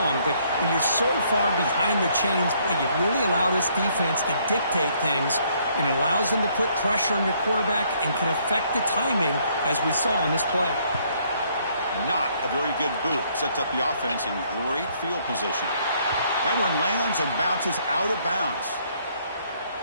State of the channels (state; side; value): inverted; both; correlation -0.67